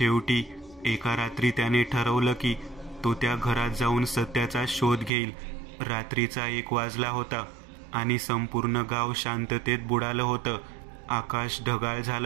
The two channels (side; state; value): left; drops out; at 5.1 s